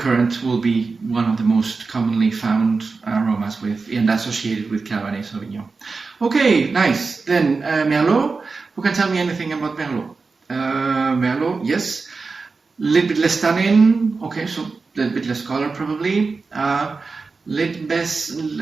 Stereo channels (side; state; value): left; quieter; 4.3 dB